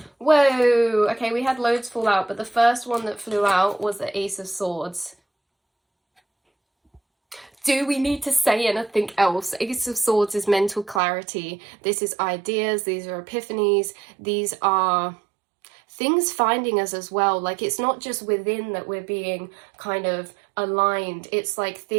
Whoa, okay, we had loads fall out, but the first one that flew out was the Ace of Swords. Do we need to say anything else? Ace of Swords is mental clarity. This is ideas, these are epiphanies, these are things finding us as well. Like, it's not just within that we're being kind of aligned. It's like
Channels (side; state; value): left; drops out; at 11.0 s